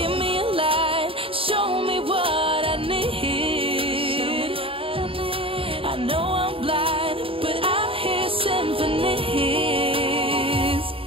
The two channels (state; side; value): late; left; 0.26 ms